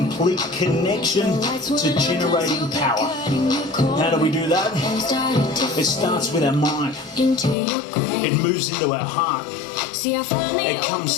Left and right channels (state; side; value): drops out; right; at 7.6 s